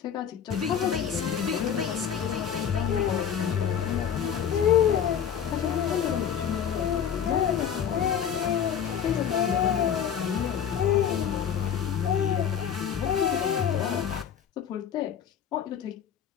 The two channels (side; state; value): right; quieter; 8.3 dB